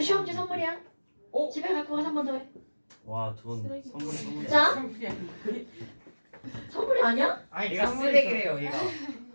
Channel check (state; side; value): inverted; both; correlation -1.00